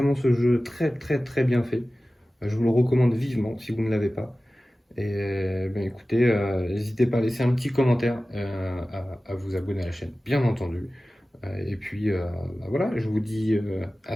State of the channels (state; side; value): normal; both; correlation 0.96